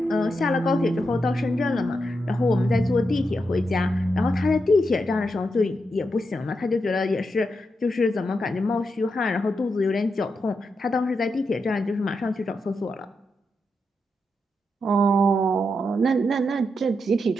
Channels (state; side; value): normal; both; correlation 0.85